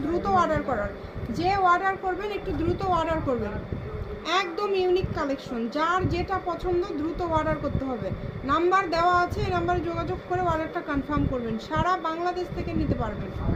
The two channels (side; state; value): both; identical; correlation 1.00